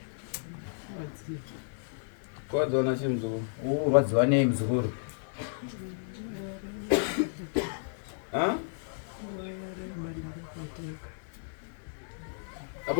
kwadziwa na chimuzukuru rwadziwa nei muzukuru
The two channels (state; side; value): silent; right; 56 dB below the other